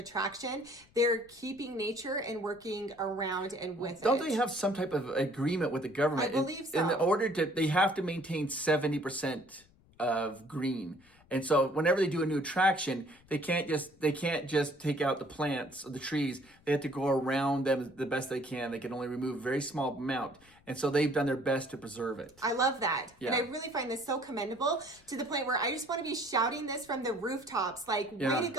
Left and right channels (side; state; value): left; noise; rumble, 29 dB below the sound